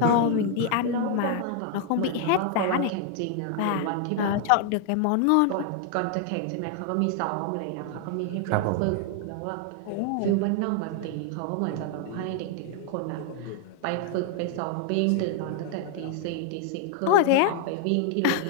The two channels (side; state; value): both; different; correlation 0.00